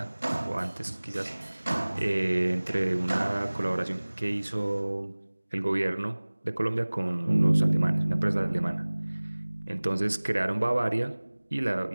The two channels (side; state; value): both; inverted; correlation -1.00